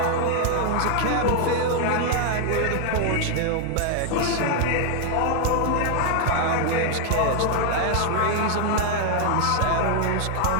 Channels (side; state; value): both; different; correlation 0.00